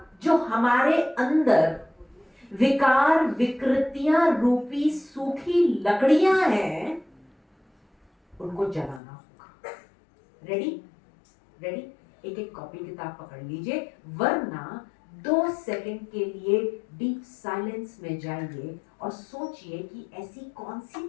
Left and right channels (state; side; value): drops out; right; at 9.0 s